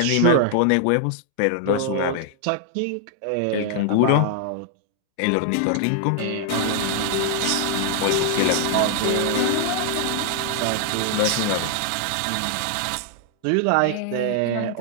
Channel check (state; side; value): different; both; correlation 0.00